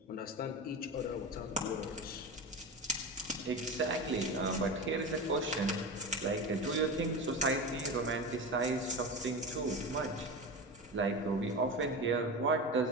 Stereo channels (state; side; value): normal; both; correlation 0.25